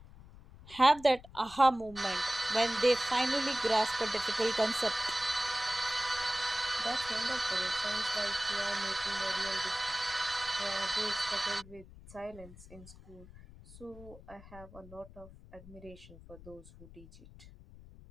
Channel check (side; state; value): left; noise; rumble, 19 dB below the sound